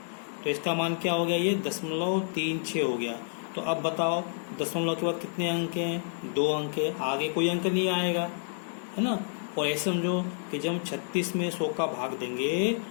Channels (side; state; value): right; silent; digital silence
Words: तो इसका मान क्या हो गया, ये 0.36 हो गया। तो अब बताओ दशमलव के बाद कितने अंक हैं, 2 अंक है, आगे कोई अंक नहीं आएगा, है ना। और ऐसे समझो कि जब 36 में 100 का भाग देंगे,